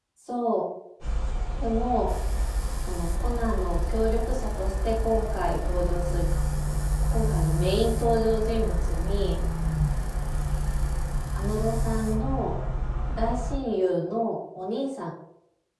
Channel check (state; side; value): identical; both; correlation 1.00